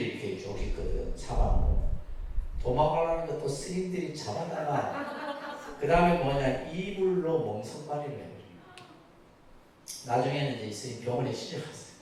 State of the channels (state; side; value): identical; both; correlation 1.00